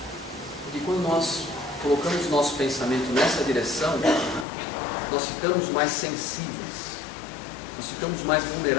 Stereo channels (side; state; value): right; drops out; at 4.5 s